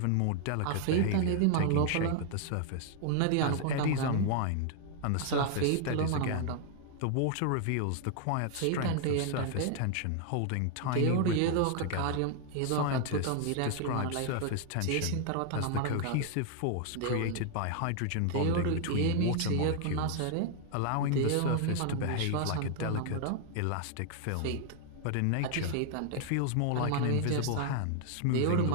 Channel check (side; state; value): both; different; correlation 0.00